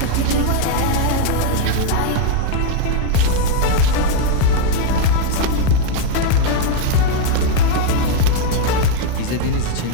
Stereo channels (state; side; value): different; both; correlation 0.00